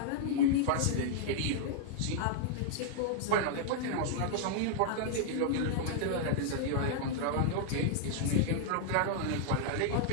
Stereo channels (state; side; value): different; both; correlation -0.01